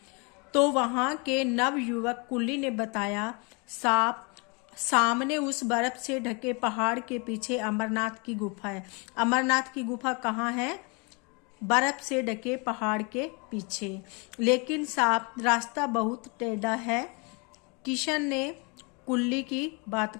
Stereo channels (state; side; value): quieter; right; 31.3 dB